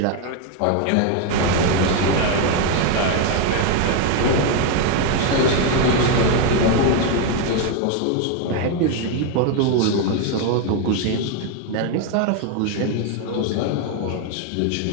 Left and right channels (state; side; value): different; both; correlation 0.01